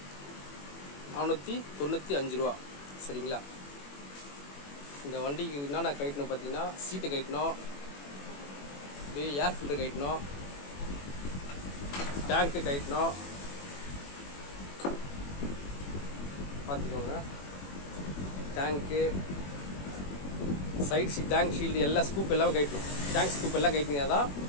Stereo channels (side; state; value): right; late; 21 ms